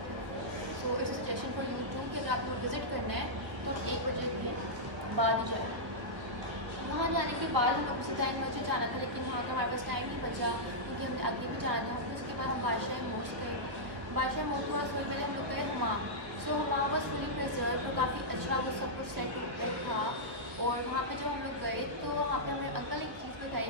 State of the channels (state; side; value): late; left; 1.2 ms